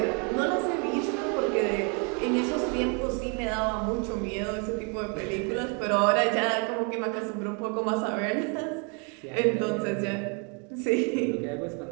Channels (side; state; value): left; quieter; 35.7 dB